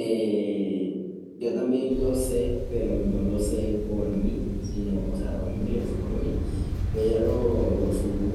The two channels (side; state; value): both; identical; correlation 1.00